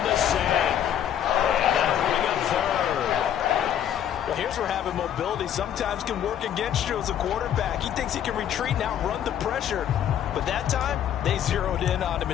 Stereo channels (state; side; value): quieter; right; 10.0 dB